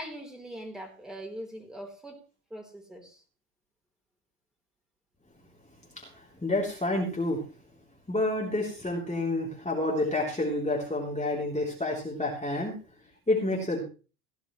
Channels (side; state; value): both; normal; correlation 0.41